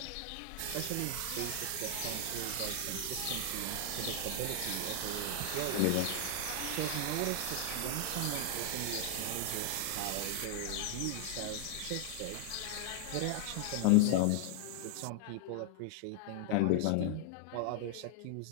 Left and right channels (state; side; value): different; both; correlation 0.00